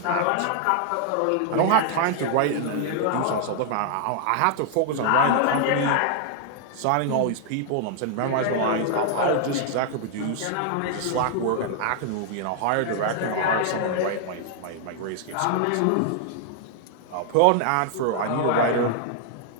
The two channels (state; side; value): different; both; correlation 0.00